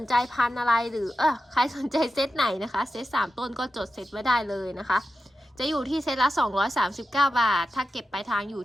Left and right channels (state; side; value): normal; both; correlation 0.92